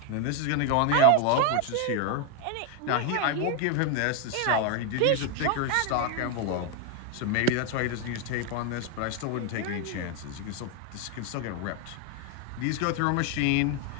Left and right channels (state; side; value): different; both; correlation 0.01